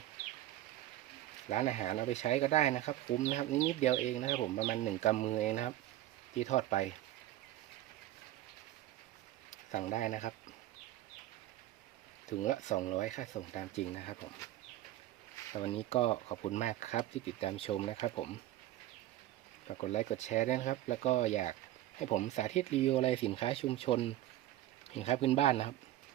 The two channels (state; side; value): quieter; left; 14.3 dB